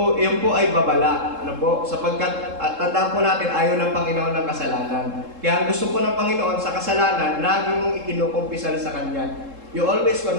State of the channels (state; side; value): late; left; 3.7 ms